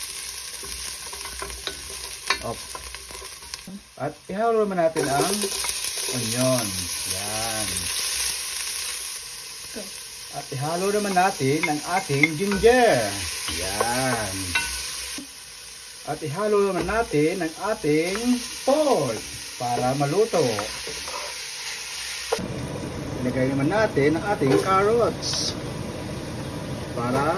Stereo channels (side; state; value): both; identical; correlation 1.00